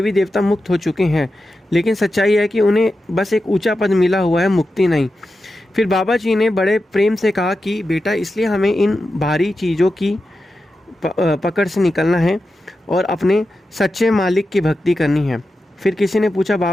देवता मुक्त हो चुके हैं, लेकिन सच्चाई है कि उन्हें बस एक ऊंचा पद मिला हुआ है, मुक्ति नहीं। फिर बाबा जी ने बड़े प्रेम से कहा कि बेटा इसलिए हमें इन भारी चीज़ों की पकड़ से निकलना है और अपने सच्चे मालिक की भक्ति करनी है। फिर किसी ने पूछा,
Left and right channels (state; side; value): normal; both; correlation 0.91